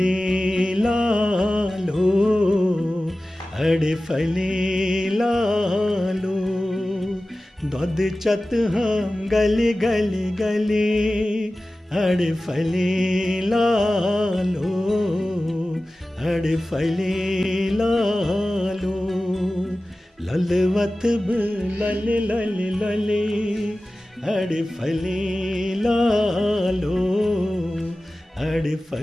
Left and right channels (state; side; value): normal; both; correlation 0.96